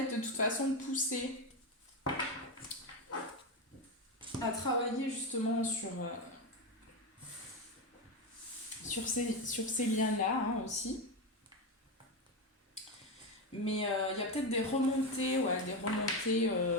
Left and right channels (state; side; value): normal; both; correlation 0.12